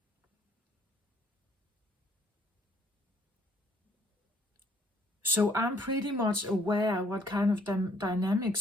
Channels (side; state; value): both; normal; correlation 0.64